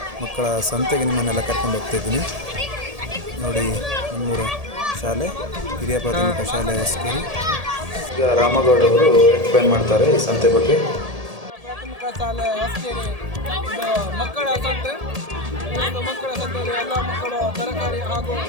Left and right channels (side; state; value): left; late; 1.7 ms